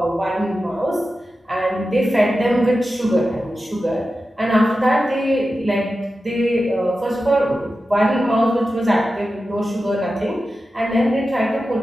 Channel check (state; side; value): normal; both; correlation 0.92